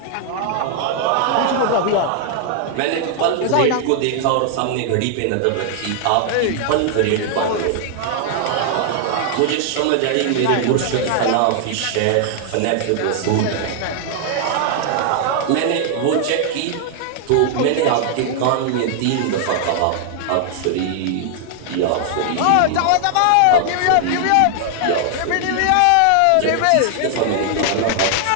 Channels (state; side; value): different; both; correlation 0.00